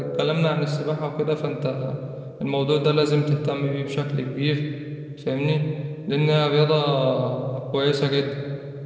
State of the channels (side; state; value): both; identical; correlation 1.00